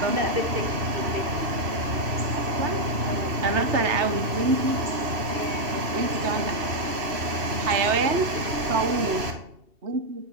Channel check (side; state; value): left; late; 2.7 ms